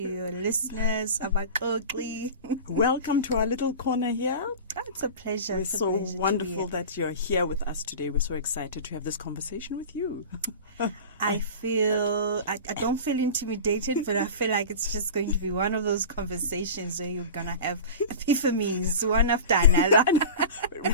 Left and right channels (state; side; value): inverted; both; correlation -0.33